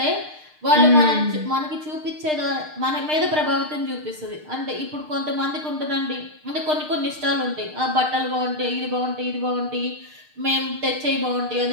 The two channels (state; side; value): late; left; 6.6 ms